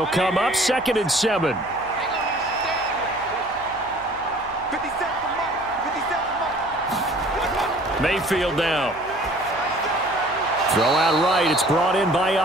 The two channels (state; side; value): noise; right; hum, 23 dB below the sound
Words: come up 2nd and 7. Mayfield now. Throw out right. It's brought in by